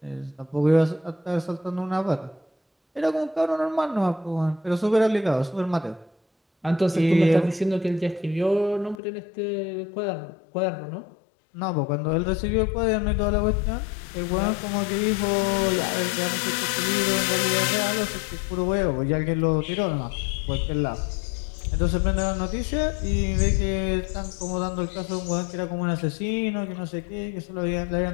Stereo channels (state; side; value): drops out; right; at 9.0 s